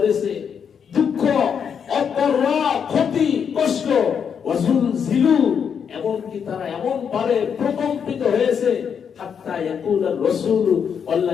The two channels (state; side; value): quieter; right; 7.3 dB